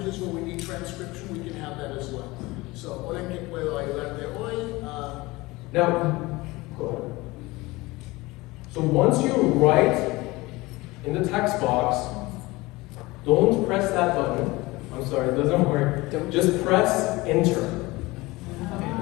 where we need transcription, we can have that as well. So, hola, ¿en qué puedo ayudarte hoy? Now, go ahead. So once you write in the text box, don't press that button. I'm sorry, it doesn't work. Just press enter.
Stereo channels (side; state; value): right; quieter; 21.6 dB